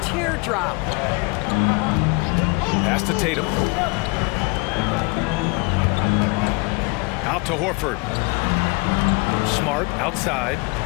teardrop. Pass to Tatum. Out to Horford. Smart outside.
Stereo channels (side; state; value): right; quieter; 27.9 dB